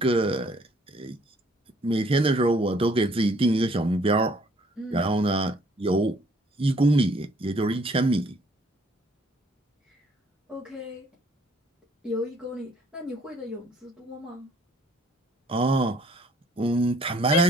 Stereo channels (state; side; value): normal; both; correlation 0.61